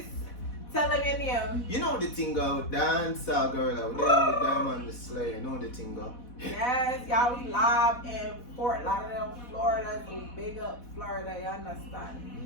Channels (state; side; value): late; right; 4.1 ms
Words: Tell them your name. You know the thing go? Dancehall Gorilla. We're there with Diamond the Slayer. You know the thing go? Yes, y'all, we live in Fort Lauderdale, Florida. So big up Florida, you understand?